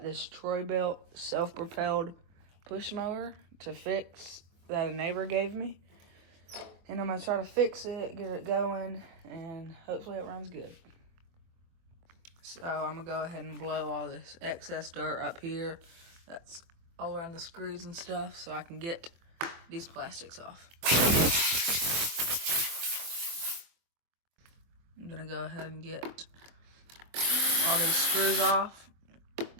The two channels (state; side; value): late; left; 23 ms